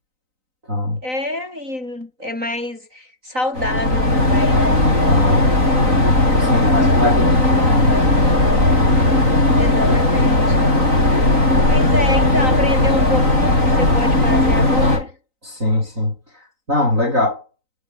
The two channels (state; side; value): late; left; 3.9 ms